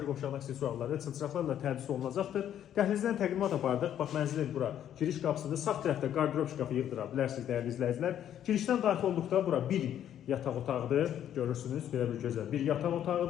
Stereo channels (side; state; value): right; quieter; 10.4 dB